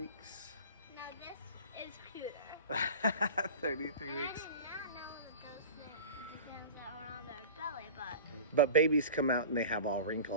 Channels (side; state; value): both; inverted; correlation -0.35